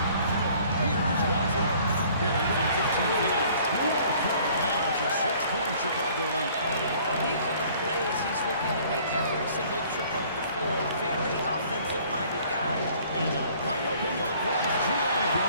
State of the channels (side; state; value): both; inverted; correlation -0.55